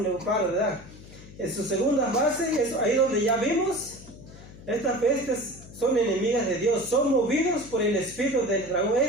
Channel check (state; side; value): noise; left; hum, 18 dB below the sound